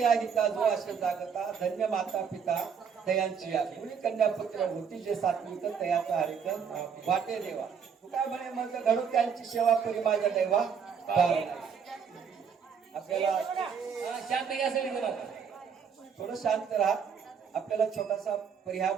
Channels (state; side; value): quieter; left; 6.8 dB